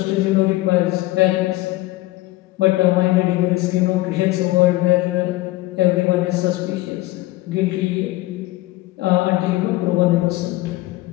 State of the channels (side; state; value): right; quieter; 18.8 dB